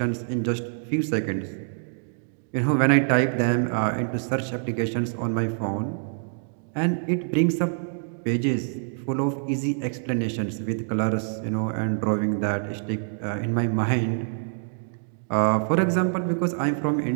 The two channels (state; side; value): silent; left; digital silence